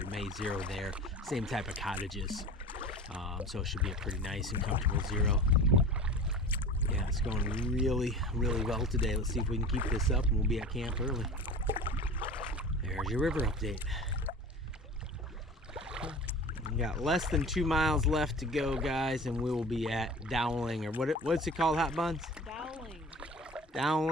may zero there. Same type of cottages, so it should be a pretty nice and comfortable zero. Yeah, it's going really, really well today. Let's see if we can keep this up, and we'll be at camp early. There's your river update. We got less than 2 miles left to go, guys, and we will be at Dowling, or what's it called, Hot Buns? Dowling.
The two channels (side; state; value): both; normal; correlation 0.37